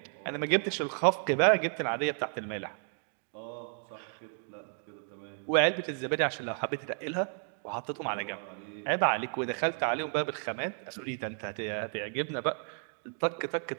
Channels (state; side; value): silent; left; 55 dB below the other